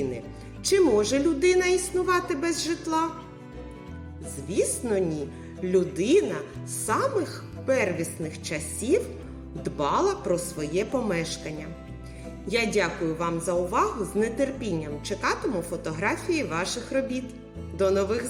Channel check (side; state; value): both; identical; correlation 1.00